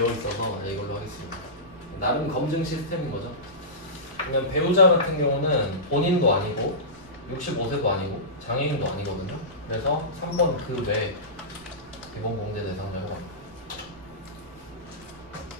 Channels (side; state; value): right; noise; rumble, 27 dB below the sound